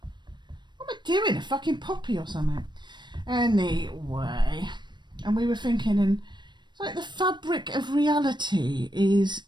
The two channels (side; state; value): left; late; 0.22 ms